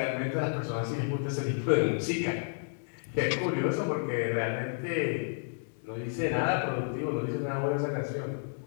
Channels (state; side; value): silent; right; digital silence